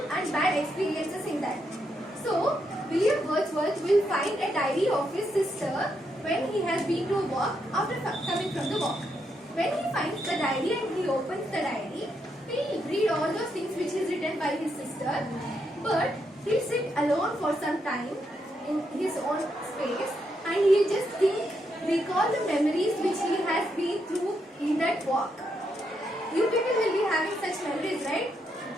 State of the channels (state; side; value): normal; both; correlation 0.80